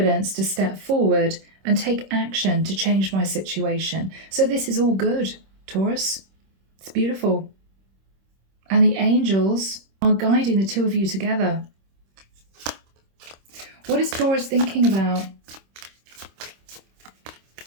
to step forward and take action to change my situation. So this is all good, Taurus. It's beautiful. And the angels are guiding the two of you together. What is Taurus thinking about?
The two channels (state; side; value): late; left; 26 ms